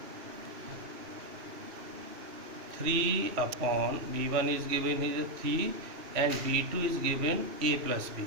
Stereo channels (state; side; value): late; left; 2.7 ms